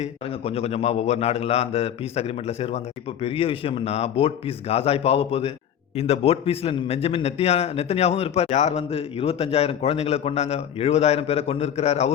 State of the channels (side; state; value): right; quieter; 9.4 dB